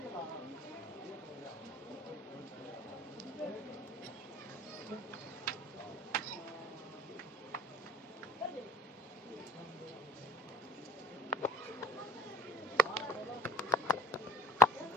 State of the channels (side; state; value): both; normal; correlation 0.48